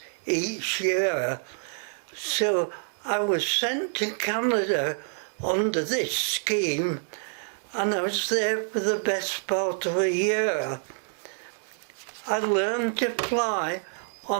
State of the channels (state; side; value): silent; left; 60 dB below the other